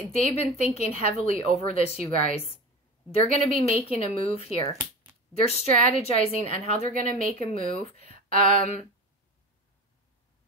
been thinking heavily over this, you guys. They're going to be making a move here. They're strategizing on how they're going to make a move.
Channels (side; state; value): both; normal; correlation 0.30